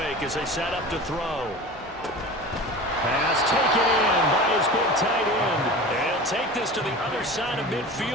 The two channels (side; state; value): both; normal; correlation 0.35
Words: as they set up to throw. Pass taken in by his big tight end. They'll take this to the other side of